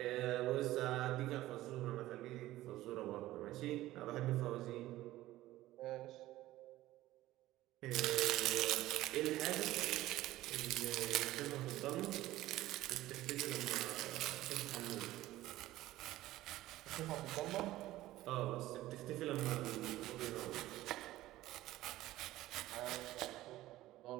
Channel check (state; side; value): quieter; left; 15.9 dB